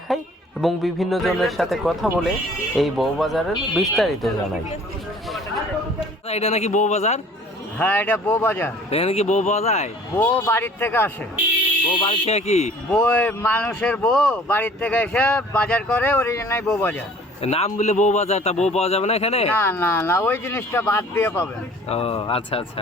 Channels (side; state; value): both; normal; correlation 0.51